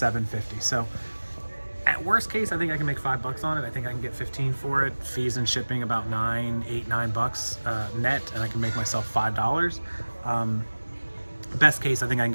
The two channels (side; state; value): both; inverted; correlation -1.00